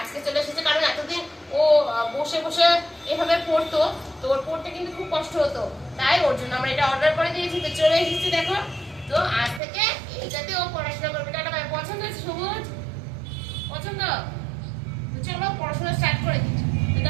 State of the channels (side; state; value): left; drops out; at 9.6 s